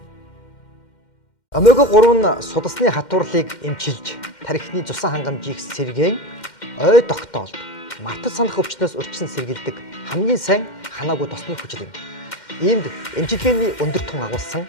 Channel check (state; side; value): late; right; 2.1 ms